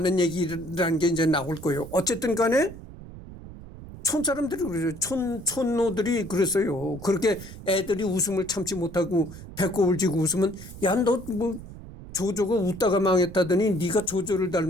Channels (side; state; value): right; noise; rumble, 15 dB below the sound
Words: 얘기라는 게 이제 나올 거예요. 어쨌든 간에 촌 사람들이 그래요. 촌노들이 그랬어요. 그렇게 애들이 웃음을 참지 못하고 배꼽을 쥐고 웃으면 야, 너 조조가 웃다가 망했다더니 네가 조조를